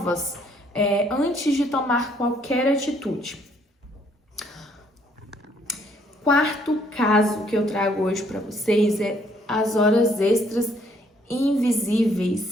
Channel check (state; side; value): normal; both; correlation 0.66